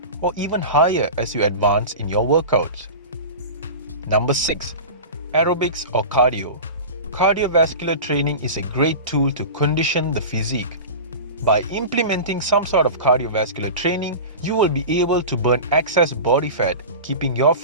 or even higher as you advance in your workouts. Number 6. Aerobics or cardio. Cardiovascular training is a great tool to condition the physique. By implementing some sort of cardiovascular training, you will be able to burn excess body fat, keeping your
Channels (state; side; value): inverted; both; correlation -0.30